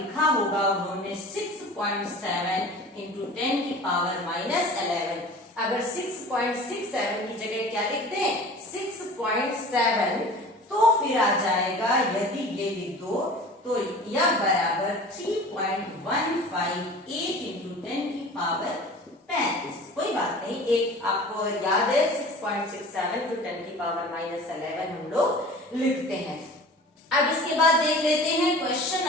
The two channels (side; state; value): both; normal; correlation 0.41